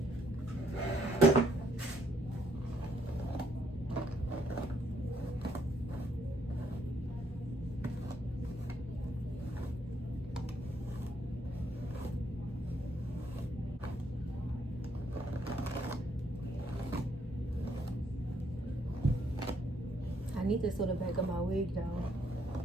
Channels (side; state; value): both; normal; correlation 0.70